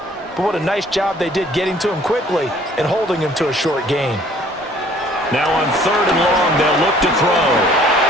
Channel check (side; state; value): both; normal; correlation 0.56